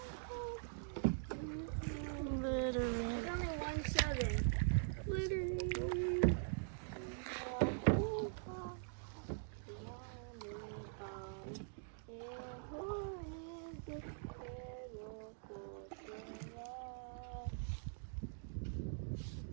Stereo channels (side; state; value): left; silent; digital silence